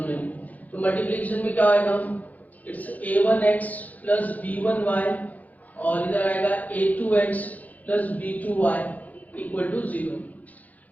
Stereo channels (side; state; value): right; late; 0.079 ms